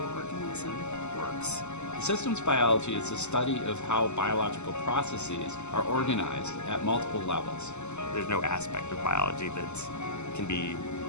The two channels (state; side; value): late; right; 0.83 ms